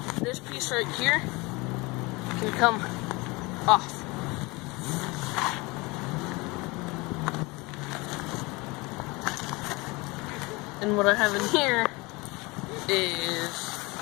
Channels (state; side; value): quieter; right; 24.7 dB